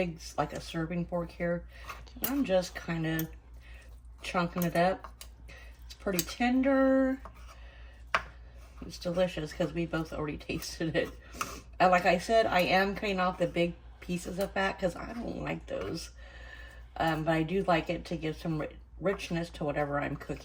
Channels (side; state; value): both; identical; correlation 1.00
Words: like a serving fork here. I'm just kind of chunking it up. It's pretty tender. It's delicious because we both already tasted it. Like I said, I am cutting off the big pieces of fat because I don't like those. But I do like it to give some richness to whatever I'm